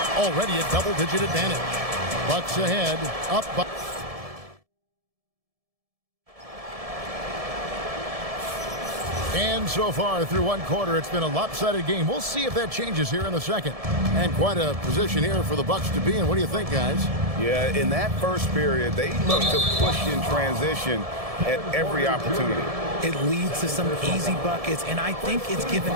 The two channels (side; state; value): left; late; 1.7 ms